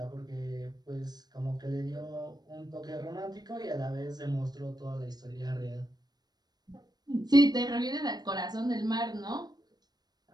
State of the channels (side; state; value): left; late; 0.19 ms